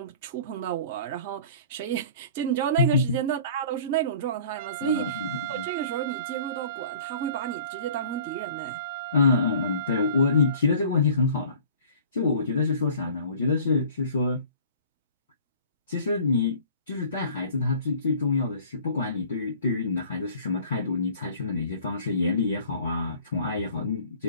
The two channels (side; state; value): both; inverted; correlation -0.47